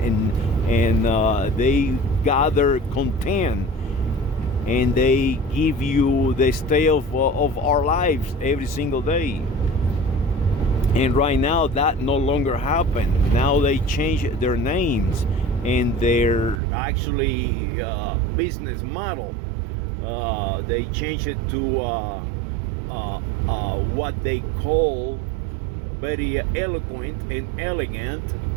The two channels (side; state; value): left; drops out; at 16.6 s